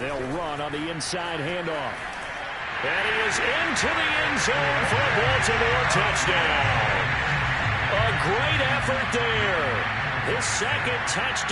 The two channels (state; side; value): identical; both; correlation 1.00